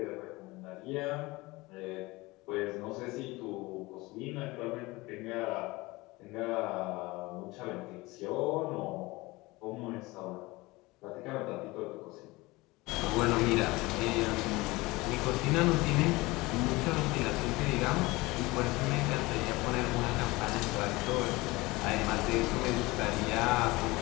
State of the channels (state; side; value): quieter; right; 21.8 dB